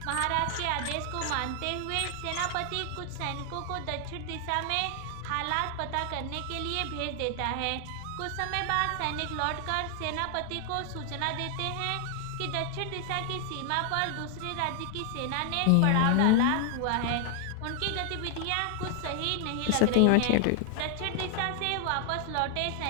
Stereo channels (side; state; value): both; different; correlation 0.00